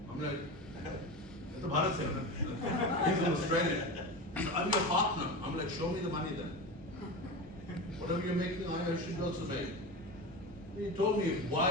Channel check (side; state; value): both; normal; correlation 0.25